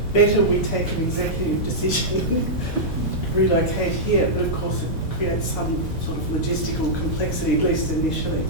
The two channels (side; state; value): both; normal; correlation -0.10